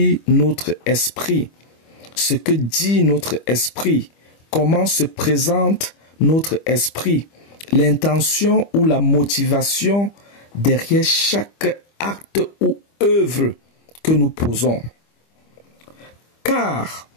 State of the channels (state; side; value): late; right; 25 ms